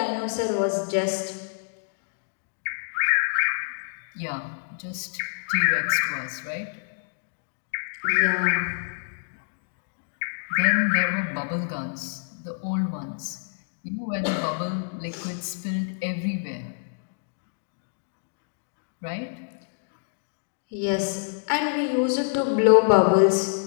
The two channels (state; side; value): silent; right; digital silence